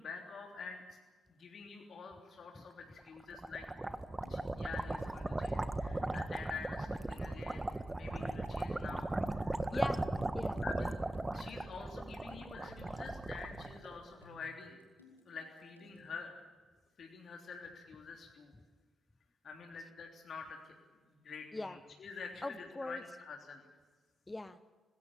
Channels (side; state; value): both; normal; correlation 0.93